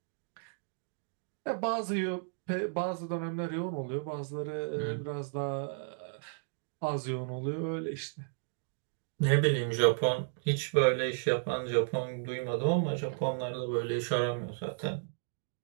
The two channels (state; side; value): silent; left; digital silence